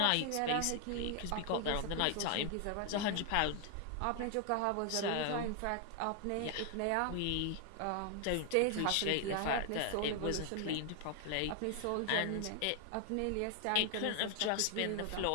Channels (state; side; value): different; both; correlation 0.00